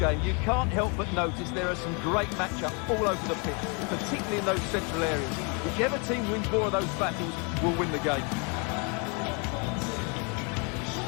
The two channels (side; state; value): right; quieter; 34.2 dB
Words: you can't help but notice there are some great matchups all over the pitch, particularly in those central areas. Whichever team wins more of those battles will win the game.